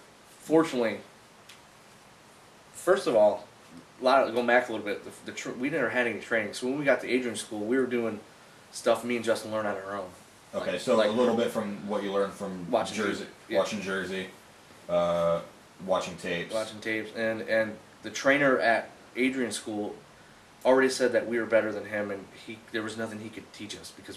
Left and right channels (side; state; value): both; identical; correlation 1.00